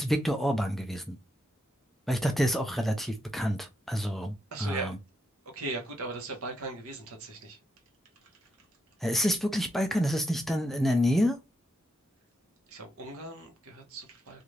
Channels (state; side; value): normal; both; correlation 0.82